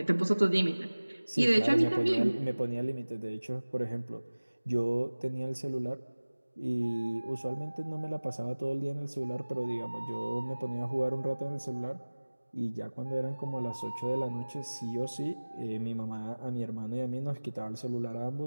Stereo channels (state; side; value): inverted; both; correlation -1.00